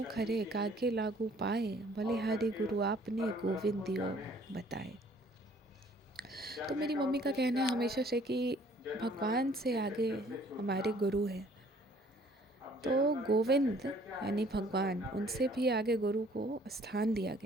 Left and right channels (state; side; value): normal; both; correlation 0.58